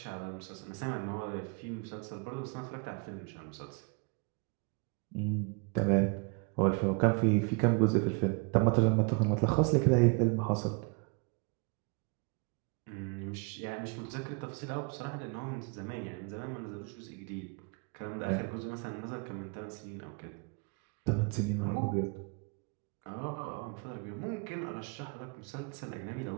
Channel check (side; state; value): left; quieter; 33.0 dB